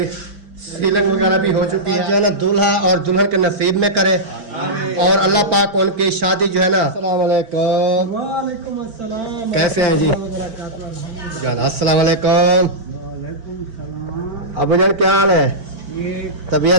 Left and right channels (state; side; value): late; left; 4.5 ms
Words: सीलिंग वगैरह भी हो चुकी है। जो है ना दूल्हा और दुल्हन के नसीब में करे और अल्लाह पाक उनकी शादी जो है ना। अस्सलाम वालेकुम। वालेकुम अस्सलाम। कैसे हैं जी जान? अस्सलाम वालेकुम। वालेकुम सलाम। अबू जान क्या हाल है? ये